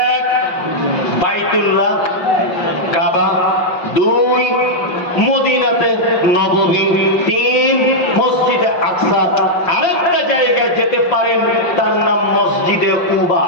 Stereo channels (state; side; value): late; right; 5.7 ms